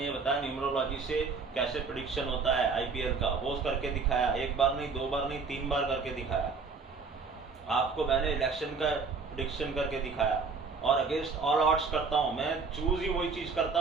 ये बताया न्यूमरोलॉजी से कैसे प्रेडिक्शन होता है IPL का, वो करके दिखाया, 1 बार नहीं 2 बार नहीं 3 बार करके दिखाया। आपको मैंने इलेक्शन का प्रेडिक्शन करके दिखाया, और अगेंस्ट ऑल ऑड्स करता हूं। मैं चूज ही वही चीज करता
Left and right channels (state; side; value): quieter; left; 4.7 dB